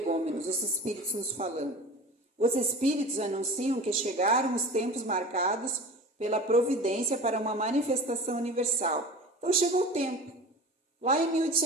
os espíritos nos falando. Os espíritos anunciam que chegaram os tempos marcados pela providência para uma manifestação universal. Então chegou o tempo, lá em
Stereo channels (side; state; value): both; normal; correlation 0.36